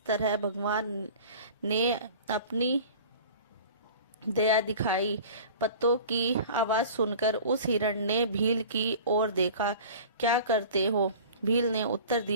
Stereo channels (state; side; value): inverted; both; correlation -0.41